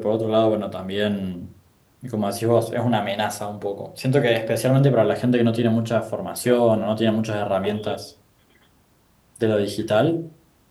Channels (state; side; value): identical; both; correlation 1.00